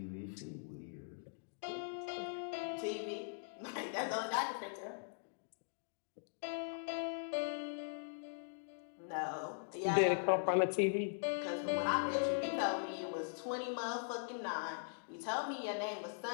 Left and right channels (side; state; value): right; silent; digital silence